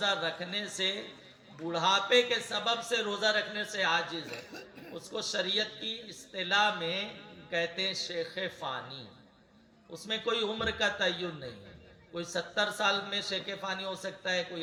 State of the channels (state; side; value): identical; both; correlation 1.00